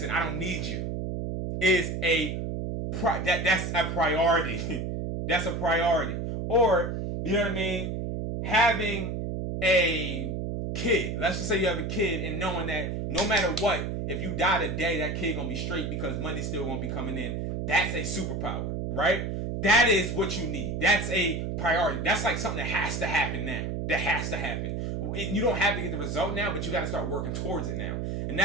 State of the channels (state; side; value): noise; right; hum, 3 dB below the sound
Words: I don't need you, is that's a priority. That's a priority. Or, you know what I mean? Having a kid. Let's just say you have a kid, and knowing that no matter what, if you die today, that kid gonna be straight because money's still gonna be coming in. That's a superpower, right? That is what you need. That's a priority. That's like something that has to happen now. That has to happen. You don't have to get the result now, but you got to start working towards it now. And